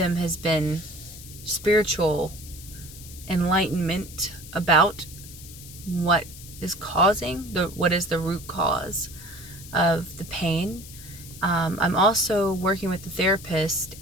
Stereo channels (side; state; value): left; noise; hiss, 16 dB below the sound